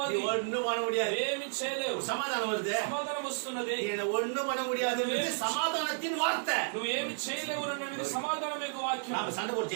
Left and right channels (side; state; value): left; silent; digital silence